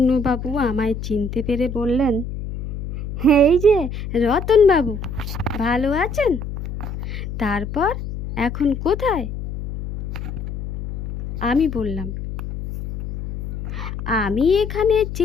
আমায় চিনতে পেরে বললেন, এই যে রতনবাবু, ভালো আছেন? তারপর এখন কোথায়? আমি বললাম, আমি এখানে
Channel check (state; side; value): noise; left; hum, 7 dB below the sound